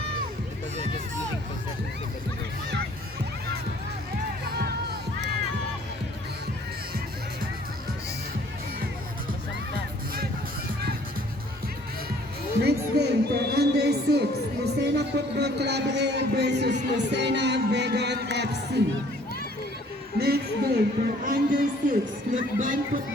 Next game for under 6, Lucena Football Club A versus Lucena Vegan FC. Next game for under 6, Lukban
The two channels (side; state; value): both; normal; correlation 0.57